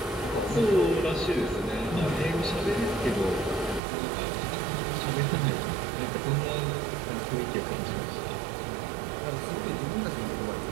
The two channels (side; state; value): left; drops out; at 3.8 s